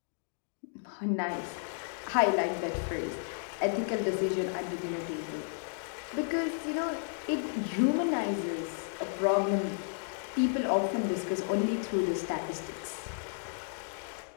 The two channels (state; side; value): silent; right; digital silence